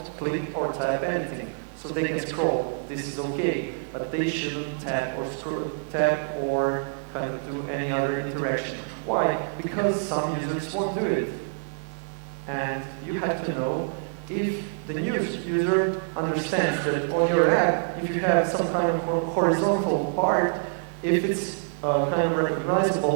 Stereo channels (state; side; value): silent; left; 61 dB below the other